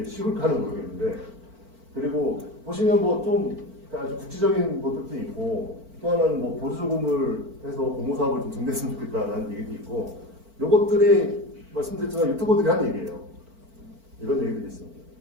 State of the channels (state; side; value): late; left; 4.5 ms